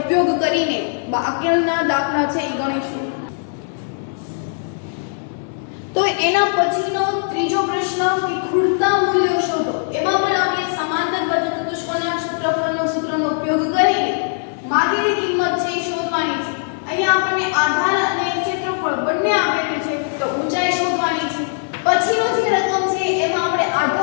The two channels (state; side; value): silent; right; digital silence